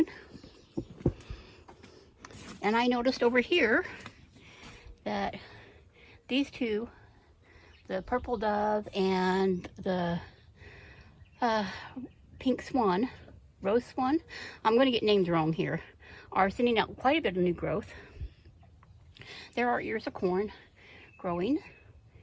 And I noticed over here that these two, the purple dove and the pink swan, rose swan, I'm going to get names wrong here, are sending out quite a bit of new growth. There are ears of corn growing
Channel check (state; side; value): identical; both; correlation 1.00